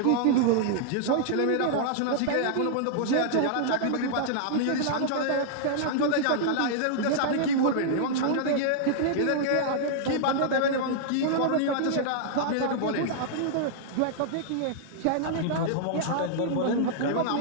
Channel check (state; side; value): different; both; correlation -0.01